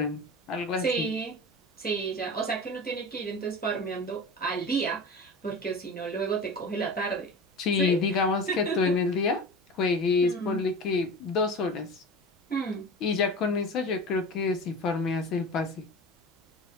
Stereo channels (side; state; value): both; normal; correlation 0.32